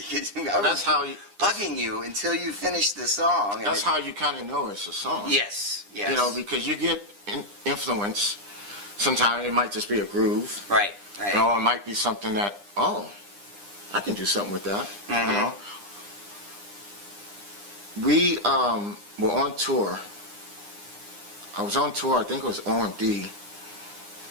I that's was how you, bugging you until you finish the song. that's how you kind of know it's a song. Yes. You know, because you get influence. Sometimes it might just be a groove. Right. Or it might be something that, oh, I can do something with that. Mm-hmm. You know. We were on tour. I was on tour, I think it was OMD,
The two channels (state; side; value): late; left; 9.9 ms